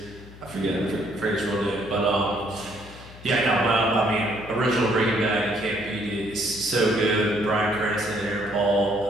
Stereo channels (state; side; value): noise; left; hum, 18 dB below the sound